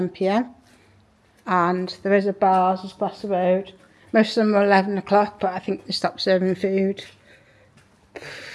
p.m. And there is a bar just across the road. Most of them are 11 o'clock, but I think they stop serving food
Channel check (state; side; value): identical; both; correlation 1.00